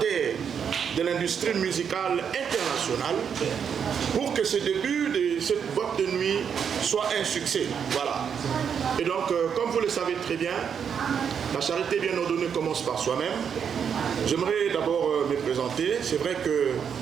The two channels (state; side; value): quieter; left; 7.4 dB